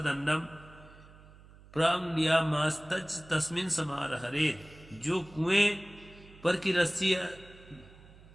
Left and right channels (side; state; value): right; noise; hum, 22 dB below the sound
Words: प्रांग्यामास्तज तस्मिन समारहरे। जो कुएं पर की रस्सी